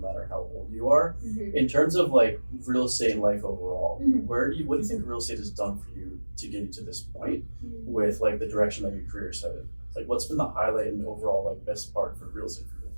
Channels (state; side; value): inverted; both; correlation -1.00